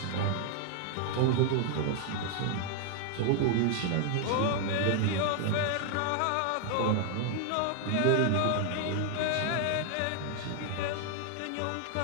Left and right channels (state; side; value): different; both; correlation 0.00